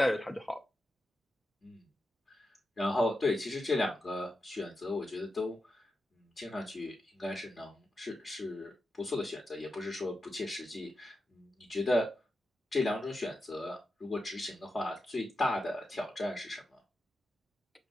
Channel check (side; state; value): both; normal; correlation 0.89